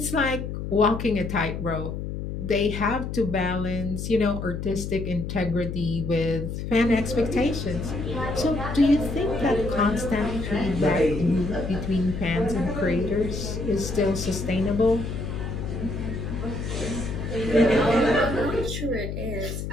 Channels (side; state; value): left; noise; hum, 5 dB below the sound